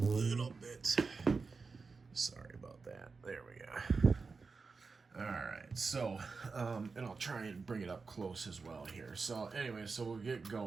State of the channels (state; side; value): quieter; left; 4.5 dB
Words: bit. Sorry about that. There we go. All right, so and I'll try and bring it up close as well here. So anyway, so we'll get